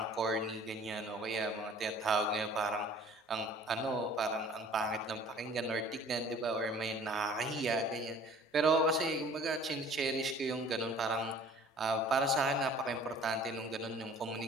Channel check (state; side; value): normal; both; correlation 0.50